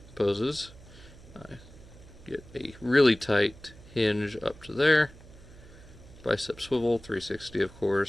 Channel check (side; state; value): right; noise; hum, 20 dB below the sound